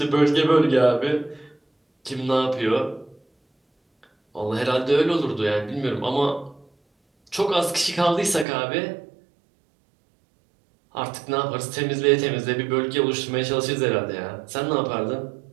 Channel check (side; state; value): left; drops out; at 8.5 s